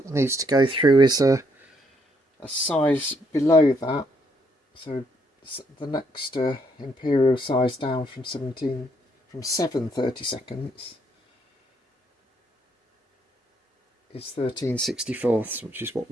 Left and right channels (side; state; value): both; normal; correlation 0.72